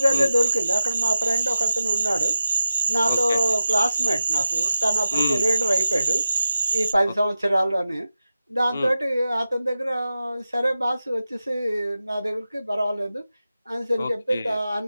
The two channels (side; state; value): both; inverted; correlation -0.92